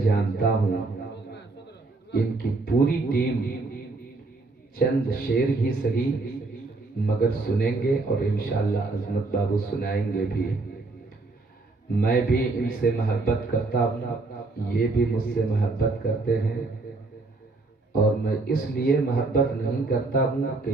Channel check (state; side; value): quieter; left; 3.4 dB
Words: ہوں ان کی پوری ٹیم چند شعر ہی صحیح مگر سنیں گے, اور انشاءاللہ عظمت بابو سنائیں گے بھی. میں بھی ان سے محبت کرتا ہوں, یہ بھی مجھ سے محبت کرتے ہیں. اور میں اس لیے محبت نہیں کرتا ہوں کہ